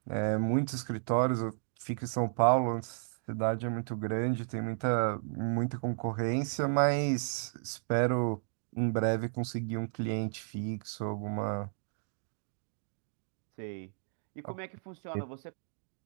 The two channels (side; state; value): left; silent; digital silence